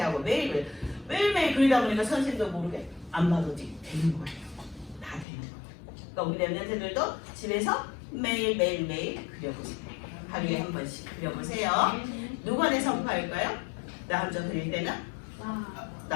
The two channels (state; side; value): drops out; right; at 5.2 s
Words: 하고 매일매일 그리다 보니까 선생님도 모르게 안 봐도 되는 거예요. 다 되는 거예요. 그러니까 우리 랩런트들도 집에서 매일 그려보세요. 하루에 한 번씩 그려보세요. 누구한테 선포할까요? 나 혼자 그릴 때는